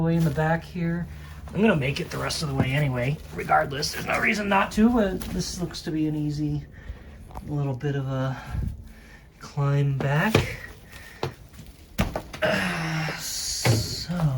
in the back here. I'm gonna make it the rest of the way anyway, regardless. There's no reason not to, but this looks to be an easy little bit of a climb back.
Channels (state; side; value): identical; both; correlation 1.00